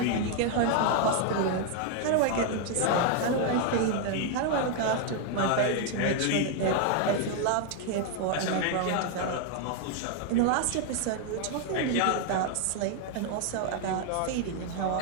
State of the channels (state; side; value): different; both; correlation 0.00